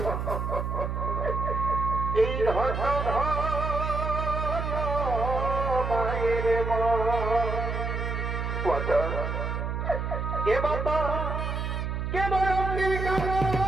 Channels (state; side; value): noise; right; hum, 2 dB below the sound